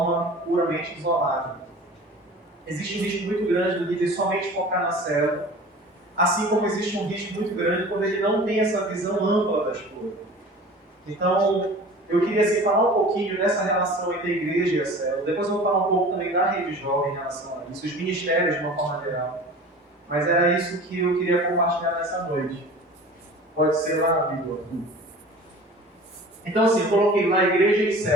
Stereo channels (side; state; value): both; normal; correlation 0.41